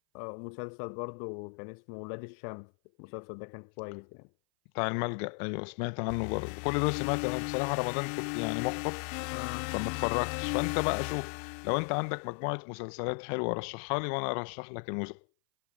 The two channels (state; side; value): silent; right; 55 dB below the other